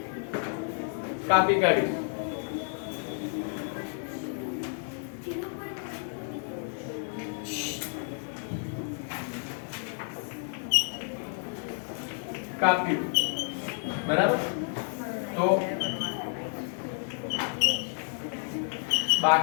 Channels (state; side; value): silent; right; 58 dB below the other